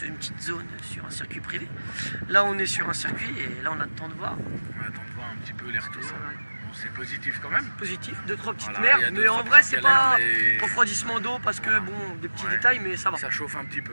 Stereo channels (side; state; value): both; inverted; correlation -1.00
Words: une petite zone sur un circuit privé. Là on est sur un circuit et là on attend de voir. On attend de voir un petit peu les retours. Bon, c'est positif quand même. Positif, 2-3 petites Voilà, merdes, mais en vrai c'est pas mais... refroidissement d'eau parce que bon, des petits détails, mais ça va. Ça chauffe un petit